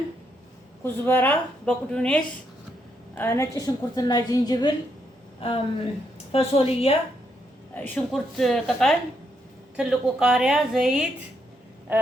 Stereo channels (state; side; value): normal; both; correlation 0.78